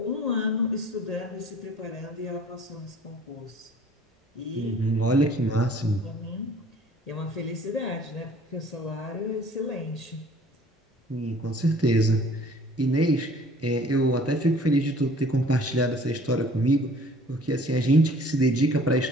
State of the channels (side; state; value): both; normal; correlation 0.52